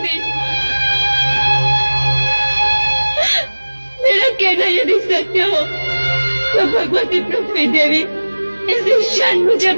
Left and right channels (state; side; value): inverted; both; correlation -1.00